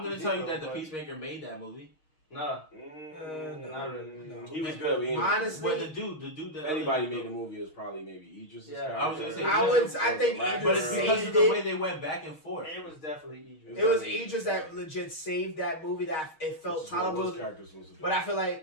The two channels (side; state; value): right; late; 6.4 ms